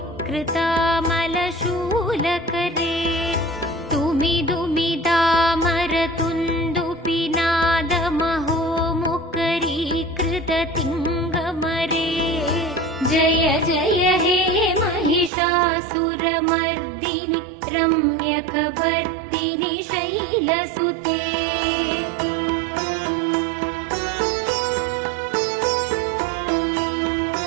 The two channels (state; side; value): drops out; left; at 15.3 s